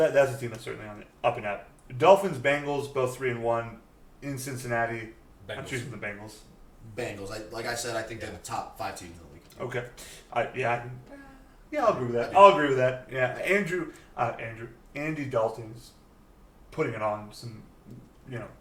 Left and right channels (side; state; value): both; identical; correlation 1.00